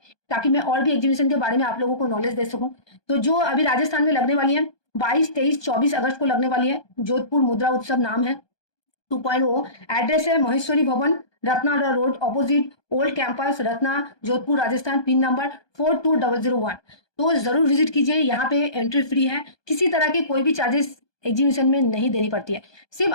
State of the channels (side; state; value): right; late; 1.2 ms